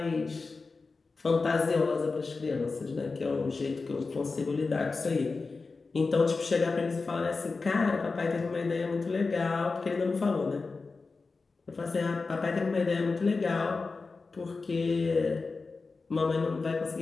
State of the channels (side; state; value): right; quieter; 4.1 dB